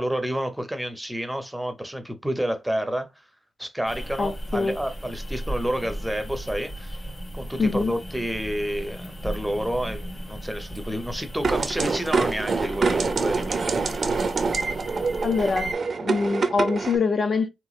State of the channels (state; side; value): normal; both; correlation 0.89